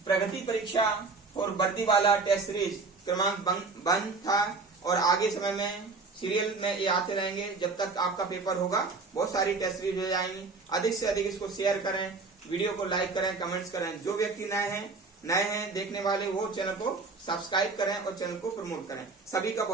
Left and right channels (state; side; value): quieter; left; 4.1 dB